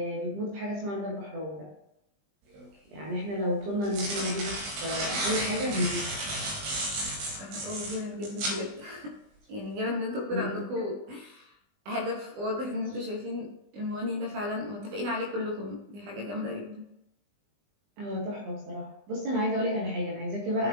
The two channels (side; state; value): left; late; 20 ms